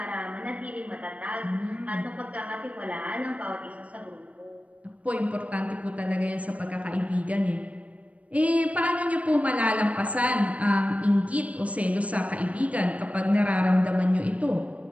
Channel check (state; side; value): late; left; 0.066 ms